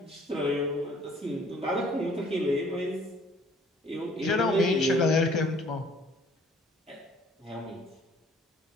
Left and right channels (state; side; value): normal; both; correlation 0.57